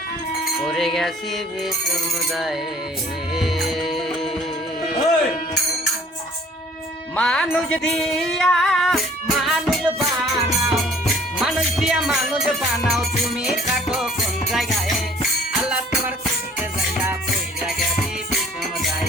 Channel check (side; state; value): both; normal; correlation 0.54